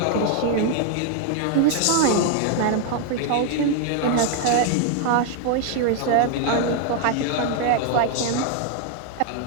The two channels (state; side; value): different; both; correlation 0.00